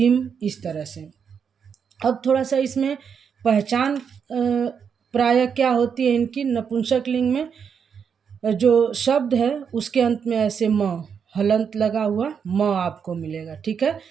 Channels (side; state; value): left; quieter; 6.9 dB